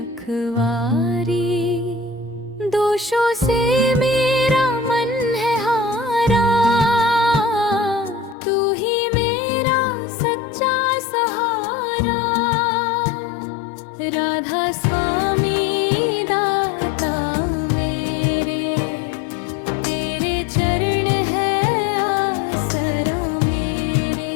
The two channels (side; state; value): right; drops out; at 8.3 s